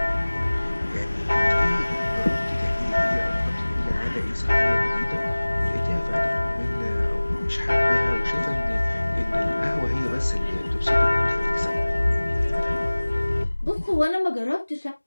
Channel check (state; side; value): inverted; both; correlation -1.00